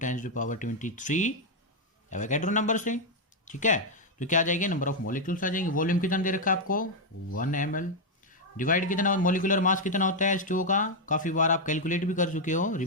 एवोगैड्रो नंबर से। ठीक है, तो क्या आ जाएगी, नंबर ऑफ मॉलिक्यूल्स आ जाएंगे। वॉल्यूम कितना दे रखा है आपको, 1 ml। डिवाइड कितना, मॉलिक्यूलर मास कितना होता है H2O का, काफी बार आप कैलकुलेट भी कर चुके हो,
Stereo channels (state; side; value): normal; both; correlation 0.00